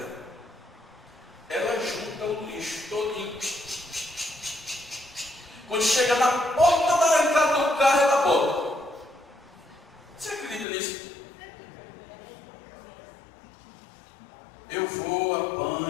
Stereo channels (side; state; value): right; drops out; at 10.7 s